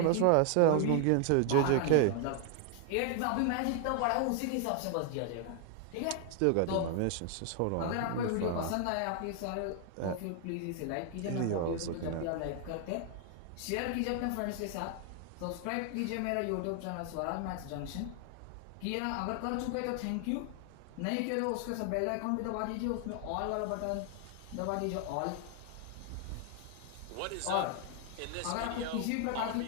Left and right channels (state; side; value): different; both; correlation 0.00